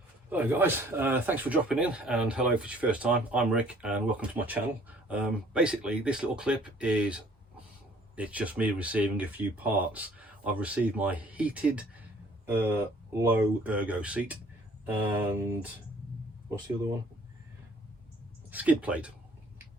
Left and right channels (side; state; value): both; normal; correlation 0.57